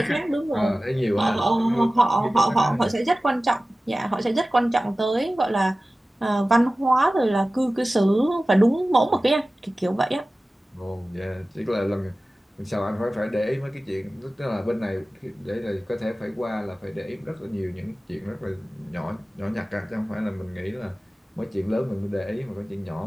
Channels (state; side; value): normal; both; correlation 0.96